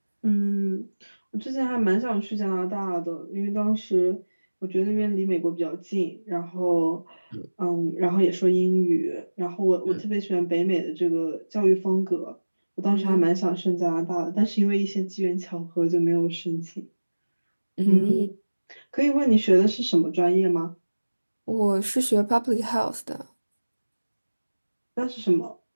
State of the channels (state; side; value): inverted; both; correlation -1.00